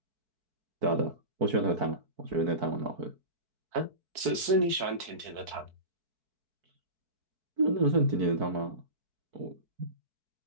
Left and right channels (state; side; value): late; left; 4.6 ms